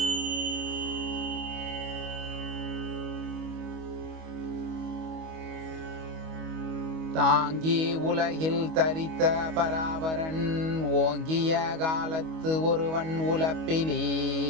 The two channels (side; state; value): left; late; 25 ms